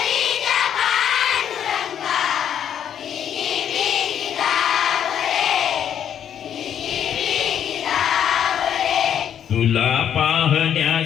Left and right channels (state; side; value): quieter; right; 9.3 dB